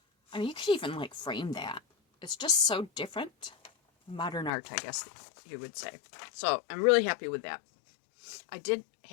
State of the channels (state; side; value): drops out; right; at 4.5 s